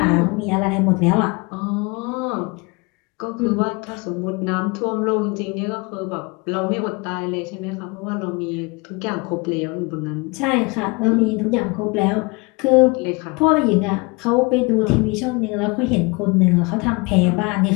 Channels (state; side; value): quieter; right; 27.7 dB